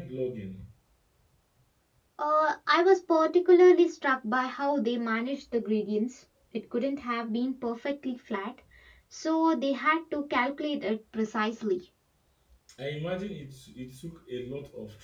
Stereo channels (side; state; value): both; identical; correlation 1.00